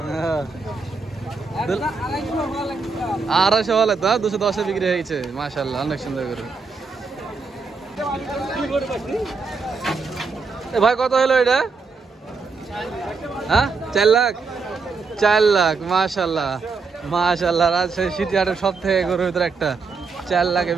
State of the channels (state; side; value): quieter; left; 4.6 dB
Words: 250 হলে তো 210-এ বিক্রি হয়ে গেছে। মাশাআল্লাহ, অনেক সুন্দর গরু। ভাই কত হলো এটা? হ্যাঁ, 4 লাখ। 4 লাখ, মাশাআল্লাহ মাশাআল্লাহ। রাজশাহী সিটি হাটের সব থেকে গরুর ভিতরে একটা 4 লাখে